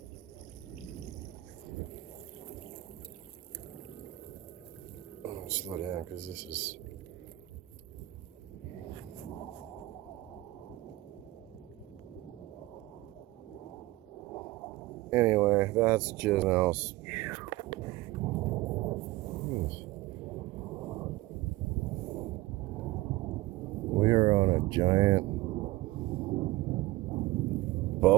Oh, slow down because this is... Anyway, that's just else. We are on a giant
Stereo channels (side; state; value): left; quieter; 18.5 dB